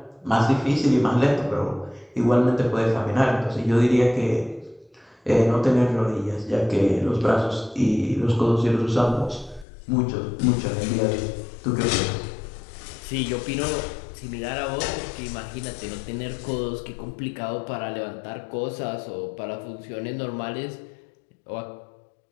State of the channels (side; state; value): right; drops out; at 9.7 s